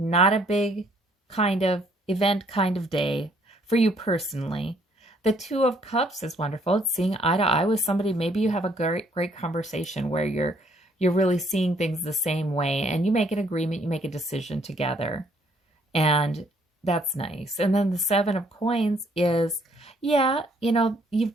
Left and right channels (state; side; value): normal; both; correlation 0.65